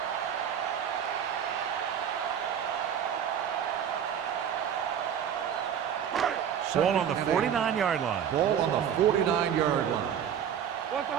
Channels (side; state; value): left; quieter; 8.8 dB